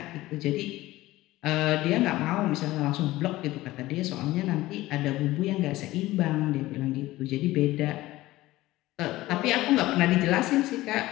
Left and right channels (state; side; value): quieter; right; 17.4 dB